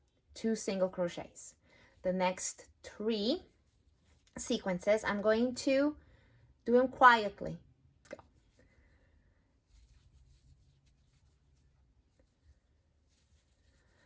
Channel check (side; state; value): both; identical; correlation 1.00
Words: 2 single crochets. The next 3 sequences, I'm going to do them quietly. Go.